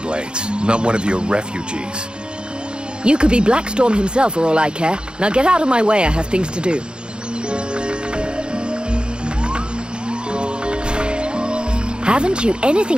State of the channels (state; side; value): late; left; 0.051 ms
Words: not one of your refugees. You could be Blackstorm himself for all I care. Now get out of my way, I have things to do. Haven't you